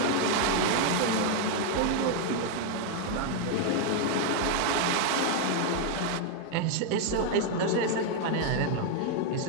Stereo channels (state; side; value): different; both; correlation 0.00